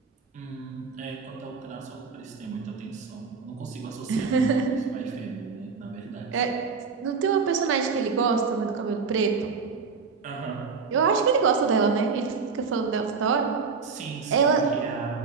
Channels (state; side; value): quieter; left; 5.2 dB